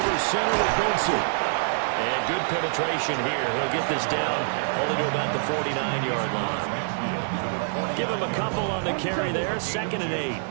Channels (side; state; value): left; silent; 55 dB below the other